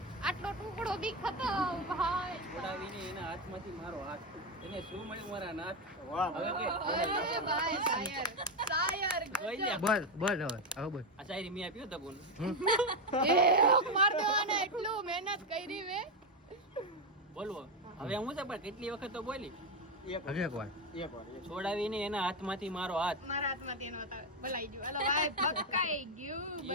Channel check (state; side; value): normal; both; correlation 0.08